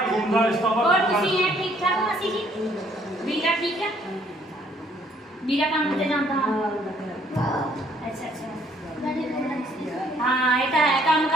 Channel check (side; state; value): both; normal; correlation 0.64